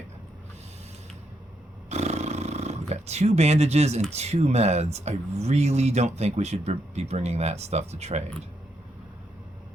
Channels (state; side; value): normal; both; correlation 0.79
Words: We've got 2 bandages and 2 meds. I really don't think we should be bringing that stuff to trade.